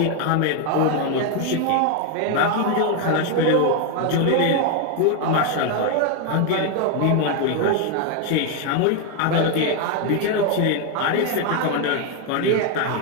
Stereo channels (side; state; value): both; different; correlation 0.01